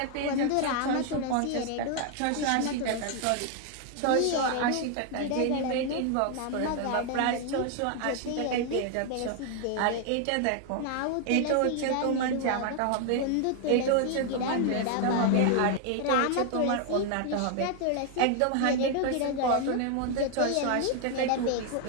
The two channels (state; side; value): different; both; correlation 0.00